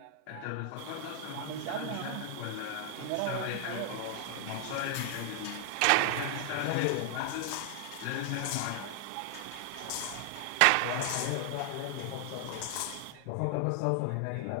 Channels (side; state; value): both; different; correlation 0.00